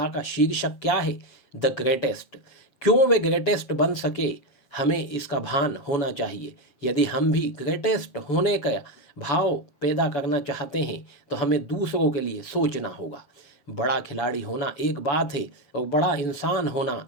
का शीर्षक क्या है? The greatest. क्यों वे ग्रेटेस्ट बन सके, हमें इसका भान होना चाहिए। यदि हम भी ग्रेटेस्ट होने का भाव पैदा करना चाहते हैं तो हमें दूसरों के लिए सोचना होगा। बड़ा खिलाड़ी होना एक बात है और बड़ा इंसान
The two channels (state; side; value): late; right; 7.0 ms